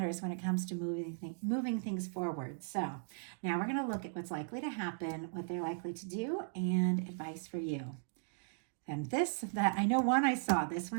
when it comes to moving things forward. So now we're going to look at what's likely to happen, what they're likely to do, and advice for you. And that I know one I saw, this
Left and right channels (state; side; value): silent; left; digital silence